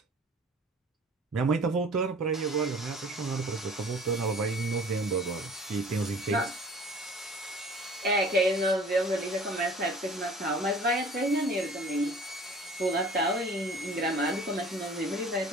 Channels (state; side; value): normal; both; correlation 0.47